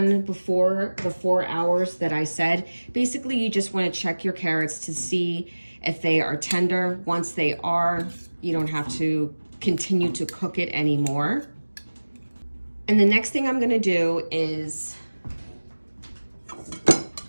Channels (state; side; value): inverted; both; correlation -1.00